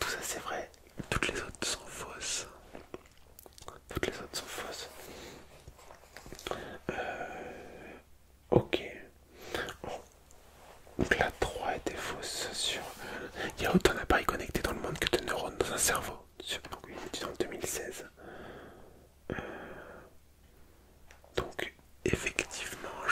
ça c'est vrai, toutes les autres sont fausses. Ok. Donc la 3 était fausse sur... Il y a autant d'appareils connectés dans le monde que de neurones dans un cerveau. Donc une étude en 2016. Donc effectivement,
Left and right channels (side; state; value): both; identical; correlation 1.00